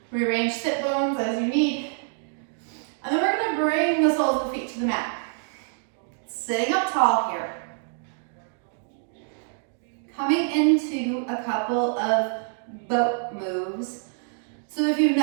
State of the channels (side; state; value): left; silent; digital silence